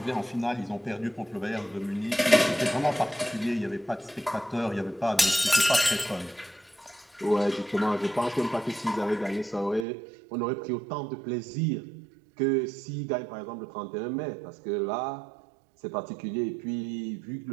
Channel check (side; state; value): left; drops out; at 9.9 s